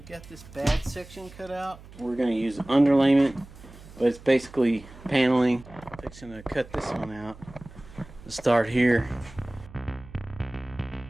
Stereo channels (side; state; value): right; noise; hum, 19 dB below the sound